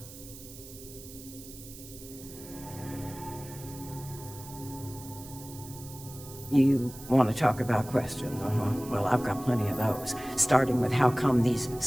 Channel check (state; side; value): noise; right; hiss, 16 dB below the sound